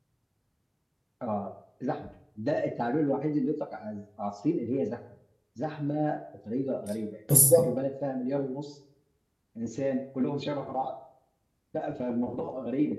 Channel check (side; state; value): both; identical; correlation 1.00